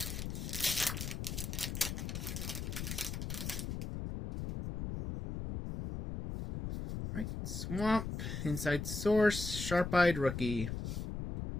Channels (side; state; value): left; noise; rumble, 4 dB below the sound